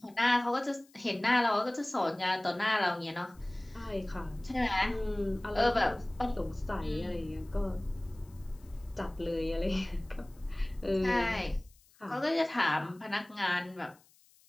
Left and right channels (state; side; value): noise; left; hiss, 30 dB below the sound